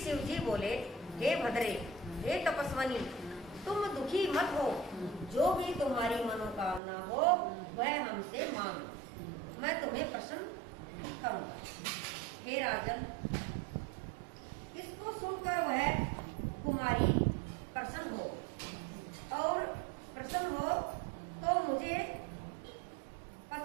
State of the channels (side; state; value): left; drops out; at 6.8 s